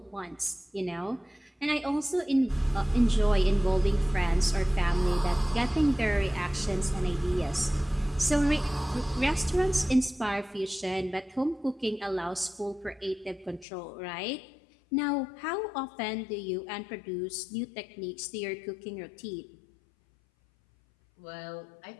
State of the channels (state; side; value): drops out; right; at 13.7 s